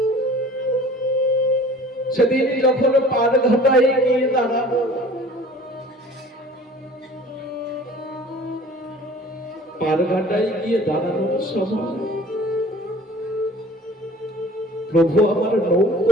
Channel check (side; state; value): both; normal; correlation 0.47